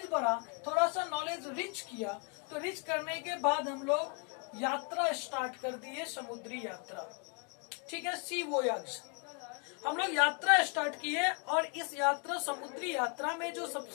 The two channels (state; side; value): quieter; right; 37.8 dB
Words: बढ़ा, थोड़ा सा नॉलेज रिच किया, तो रिच करने के बाद हम लोग यात्रा स्टार्ट कर दिए, समुद्री यात्रा। ठीक है, सी वोयाज हम लोग यात्रा स्टार्ट किए। और इस यात्रा, समुद्री यात्रा में जो